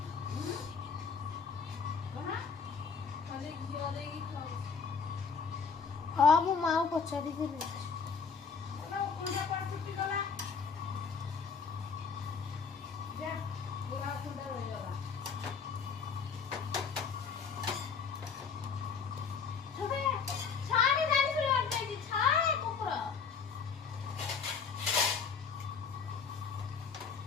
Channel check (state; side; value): quieter; right; 5.8 dB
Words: हाँ वो माँ पचारी के लिए